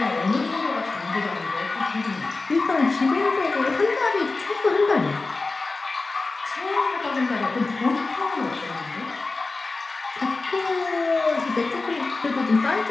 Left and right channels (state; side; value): quieter; right; 3.6 dB